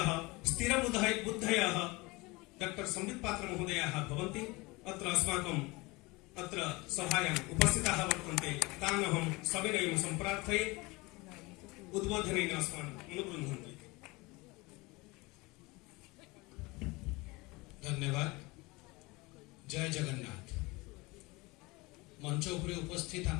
स्थिरबुद्धयः डॉक्टर संबित पात्र महोदयाः भवन्ति। अत्र अस्माकम् अत्र सभायाम् उपस्थिताः वर्तन्ते। तान् अहं सविनयं सम्प्रार्थये उद्बोधनेन अस्मान् अनुगृह्णन्ति। धन्यवाद। जय जगन्नाथ। मंच उपरे उपस्थित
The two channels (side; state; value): right; quieter; 23.8 dB